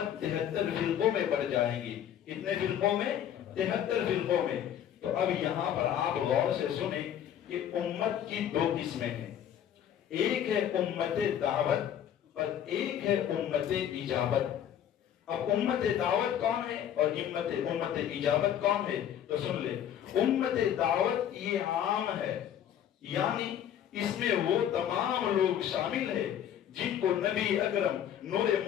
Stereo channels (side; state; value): right; quieter; 10.0 dB